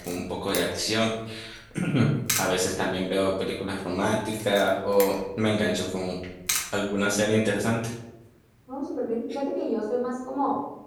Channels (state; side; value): identical; both; correlation 1.00